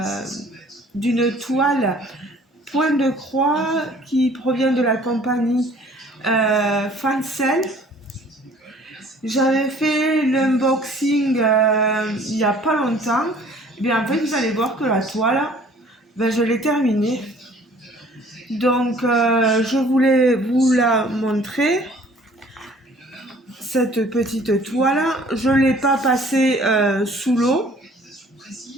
d'une toile point de croix qui provient de la compagnie Fancel. J'avais fait l'unboxing il n'y a pas longtemps. Et bien en fait, vous allez voir que la toile, je l'ai terminée. Donc, je voulais vous la montrer. Cette petite toile, je ne l'ai pas passée sous l'eau.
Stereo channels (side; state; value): both; normal; correlation 0.54